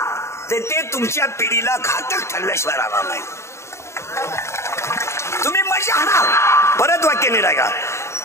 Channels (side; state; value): right; late; 0.13 ms